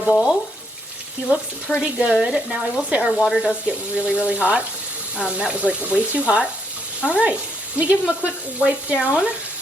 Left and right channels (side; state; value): both; normal; correlation 0.74